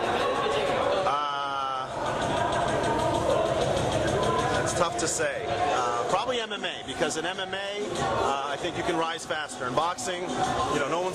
It's tough to say. Probably MMA, because in MMA, I think you can rise faster. In boxing, you know, no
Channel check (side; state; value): both; identical; correlation 1.00